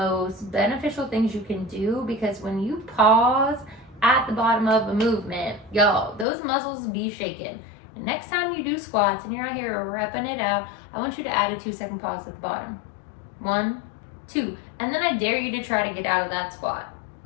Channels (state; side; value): drops out; right; at 6.2 s